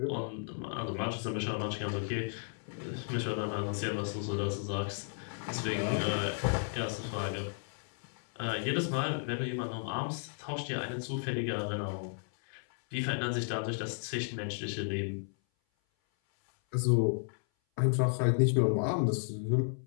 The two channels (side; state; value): right; silent; 55 dB below the other